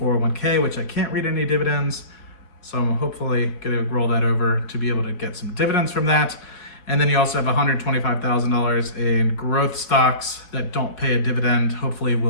which I can't read any dividends, so I'm hopefully going to roll that over to be able to get some dividends from that. And then you also have $125,000 in growth stocks that don't pay a dividend. Hopefully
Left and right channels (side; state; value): right; late; 3.9 ms